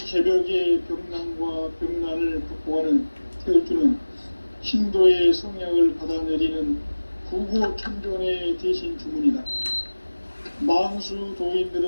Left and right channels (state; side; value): inverted; both; correlation -1.00